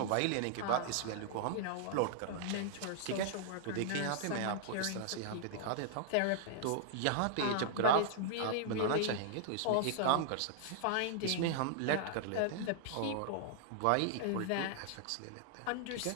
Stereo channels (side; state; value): both; different; correlation -0.01